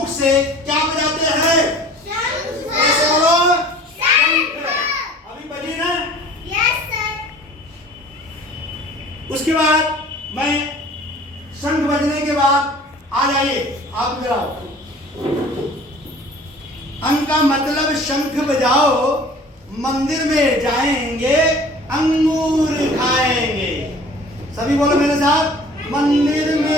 से क्या बजाते हैं? कैसे बोलो? अभी बजी ना? Yes sir. उसके बाद मैं शंख बजने के बाद आ जाइए, आप इधर आओ। अंक का मतलब शंख बजाओ, मंदिर में जाएंगे, अंगूर खाएंगे। सभी बोलो मेरे साथ, मंदिर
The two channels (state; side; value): normal; both; correlation 0.47